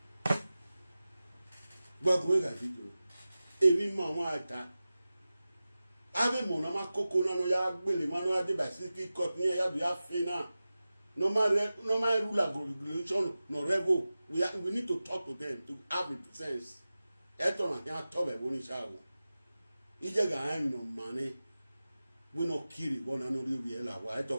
What way that video? Every man want that. Ave mon na makoko na no ya gbele ma no ya de Pacific Court ni ya do ya fe na no ma rule regulation no revo we need to talk to them to have a sense eto na ya to be boni sha wo ije ga an no mane we no kiri one another we la why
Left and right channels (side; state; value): both; inverted; correlation -0.95